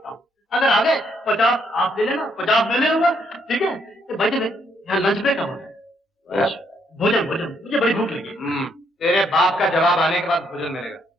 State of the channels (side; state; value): both; normal; correlation 0.72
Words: हूँ। अगर आगे 50 आप ले लेना, 50 मैं ले लूंगा, ठीक है? तो भाई यहाँ लंच ब्रेक है, भोजन, मुझे बड़ी भूख लगी। तेरे बाप का जवाब आने के बाद भोजन मिलेगा।